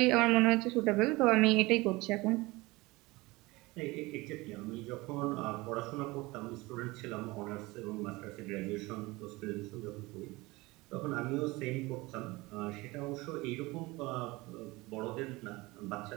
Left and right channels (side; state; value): left; quieter; 22.0 dB